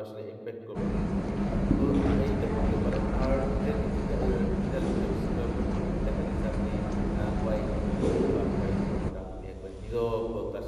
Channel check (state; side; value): identical; both; correlation 1.00